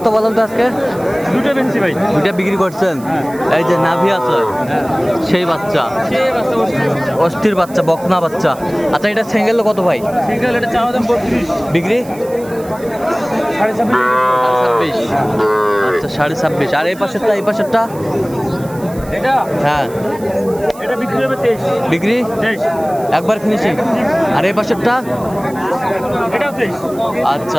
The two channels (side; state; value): right; noise; hiss, 21 dB below the sound